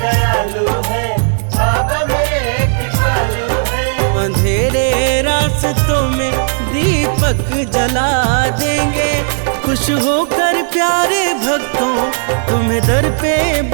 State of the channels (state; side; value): silent; left; digital silence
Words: है, बाबा मेरे कृपालु है। अंधेरे रास्तों में दीपक जला देंगे। खुश होकर प्यारे भक्तों तुम्हें दर पे